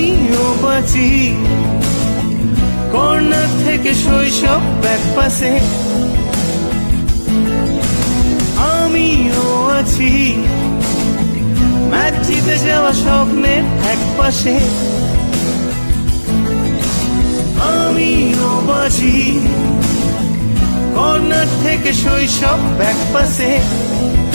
বাঁচি কর্নার থেকে শৈশব এক পাশে, আমিও আছি ম্যাচ জিতে যাওয়া স্বপ্নের এক পাশে। আমিও বাঁচি কর্নার থেকে শৈশব এক পাশে,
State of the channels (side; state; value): both; inverted; correlation -1.00